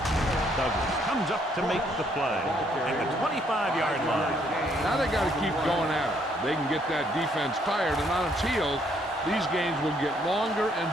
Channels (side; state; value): both; normal; correlation 0.68